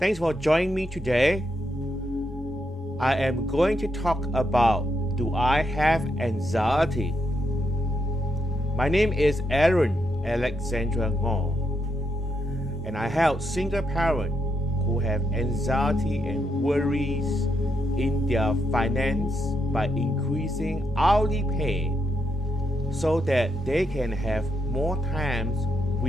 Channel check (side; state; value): both; normal; correlation 0.81